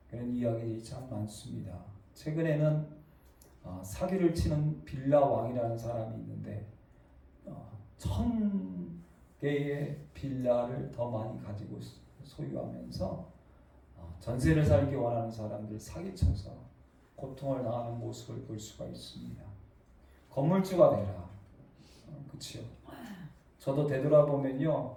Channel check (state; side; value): identical; both; correlation 1.00